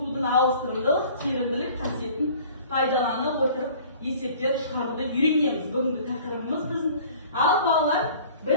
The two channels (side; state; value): both; inverted; correlation -0.48